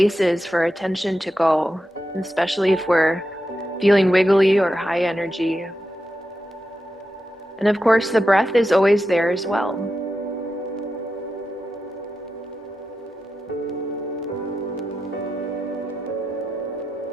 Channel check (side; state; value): both; normal; correlation 0.89